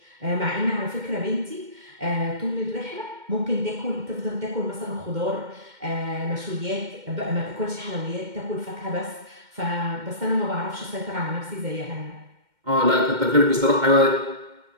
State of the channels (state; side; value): late; left; 2.1 ms